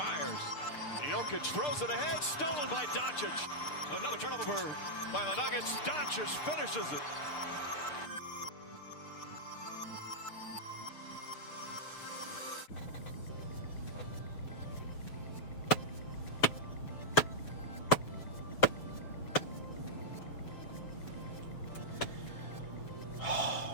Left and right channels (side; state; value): right; late; 6.7 ms